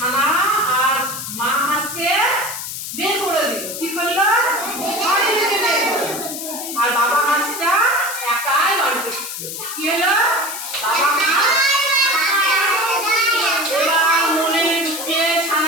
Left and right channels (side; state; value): left; noise; hiss, 7 dB below the sound